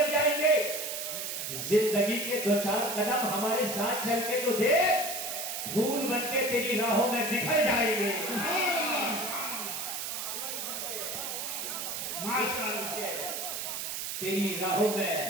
जाएंगे। जिंदगी के दो चार कदम हमारे साथ चल के तो देख, फूल बनके तेरी राहों में बिखर जाएंगे। माशाअल्लाह, तेरी राहों में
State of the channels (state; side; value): noise; right; hiss, 4 dB below the sound